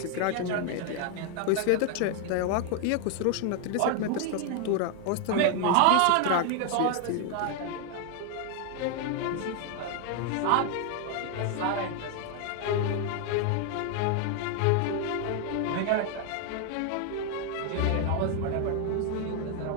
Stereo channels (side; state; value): both; different; correlation 0.00